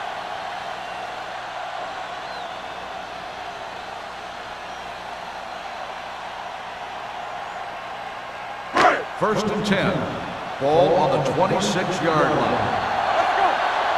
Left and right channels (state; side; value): identical; both; correlation 1.00